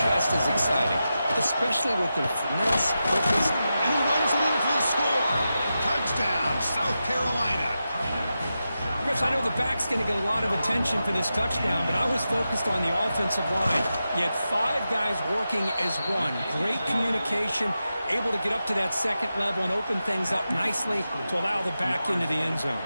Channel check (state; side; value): inverted; both; correlation -0.90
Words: just as exciting, especially with their finesse, quickness. And he runs it in for the score. Touchdown, South Carolina. Chris, I know the back's going to get a lot of attention for this touchdown, but I was focused on the offensive line. You had 5 guys working as one. Great communication, able to get up to that second level and open things up nicely to allow the back into the end zone.